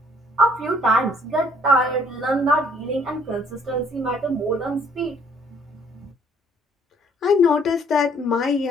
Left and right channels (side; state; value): both; normal; correlation 0.61